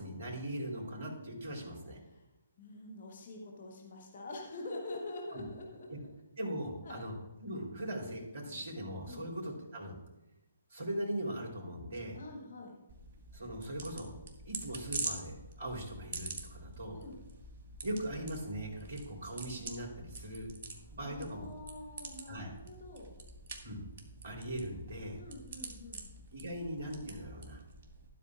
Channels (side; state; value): both; inverted; correlation -0.67